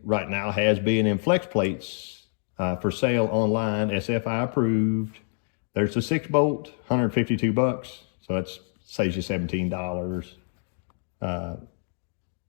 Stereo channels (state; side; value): silent; right; digital silence